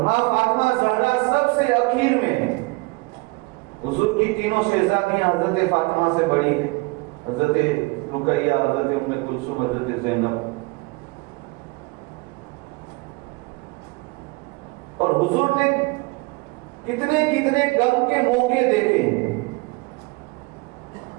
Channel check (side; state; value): left; quieter; 26.6 dB